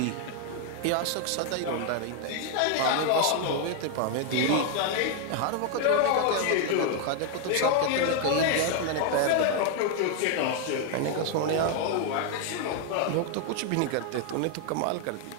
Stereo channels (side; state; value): both; different; correlation 0.01